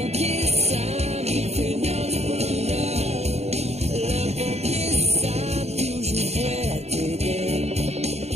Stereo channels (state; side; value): late; left; 0.31 ms